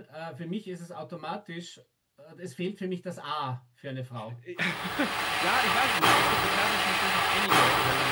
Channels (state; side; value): identical; both; correlation 1.00